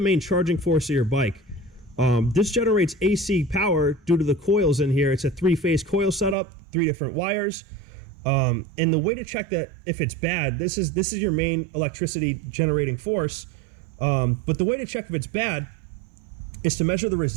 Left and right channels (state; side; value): drops out; left; at 6.4 s